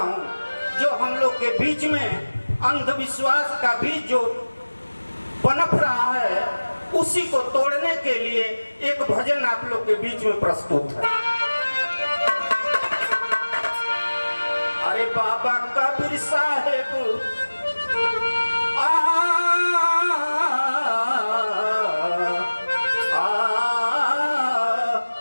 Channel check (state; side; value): inverted; both; correlation -1.00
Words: जो हम लोग के बीच में अंधविश्वास का बीज जो पनप रहा है, उसी को तोड़ने के लिए एक भजन आप लोग के बीच में प्रस्तुत है। अरे बाबा कबीर साहेब